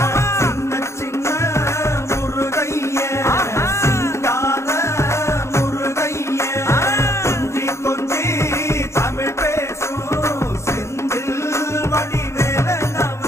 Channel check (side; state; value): right; late; 0.13 ms